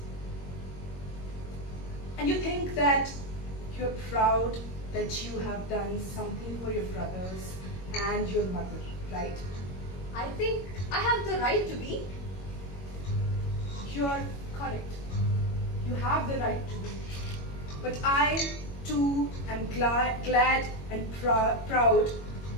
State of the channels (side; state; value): right; late; 21 ms